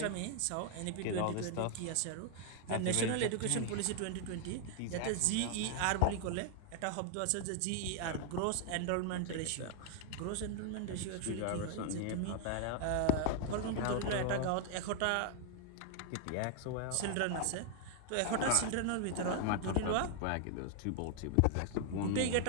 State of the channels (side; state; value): both; different; correlation 0.00